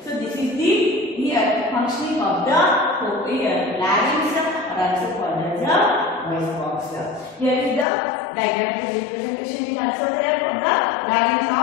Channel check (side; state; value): right; drops out; at 7.9 s